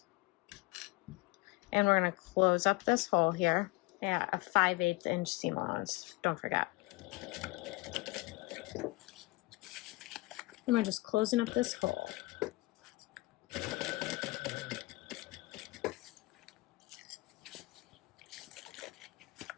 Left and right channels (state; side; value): quieter; right; 22.5 dB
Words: And we're going to close up this hole here at a 5/8 inch seam allowance. Don't forget. And we're just closing up this hole.